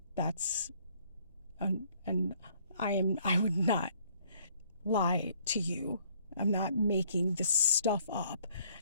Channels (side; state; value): both; inverted; correlation -0.62